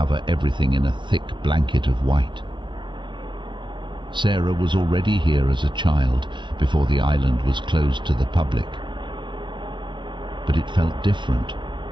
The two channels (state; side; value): late; left; 0.23 ms